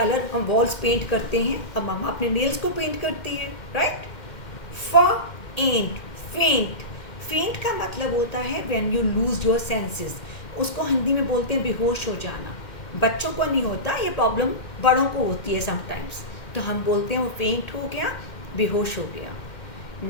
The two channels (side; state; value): right; late; 2.1 ms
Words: हम वॉल्स पेंट करते हैं, और मम्मा अपने नेल्स को पेंट करती है, राइट। फ, एंट, फेंट। फेंट का मतलब होता है when you lose your senses. उसको हिंदी में बोलते हैं बेहोश हो जाना। बच्चों को नहीं होता ये प्रॉब्लम, बड़ों को होती है समटाइम्स, तो हम बोलते हैं वो फेंट हो गया, बेहोश हो गया।